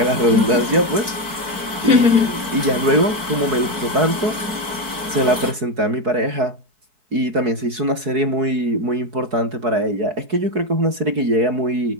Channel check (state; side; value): late; left; 4.5 ms